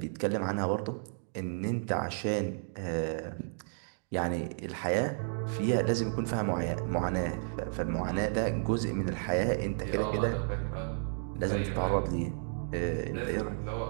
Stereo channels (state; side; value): silent; left; digital silence